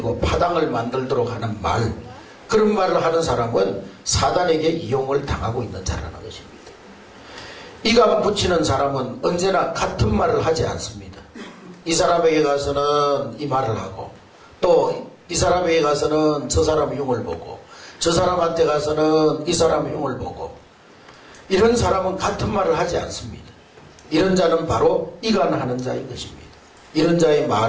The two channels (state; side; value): identical; both; correlation 1.00